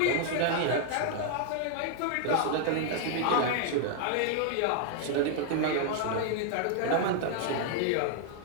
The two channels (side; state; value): both; different; correlation 0.00